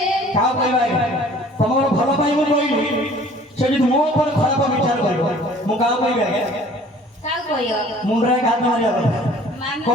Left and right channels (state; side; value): normal; both; correlation 0.51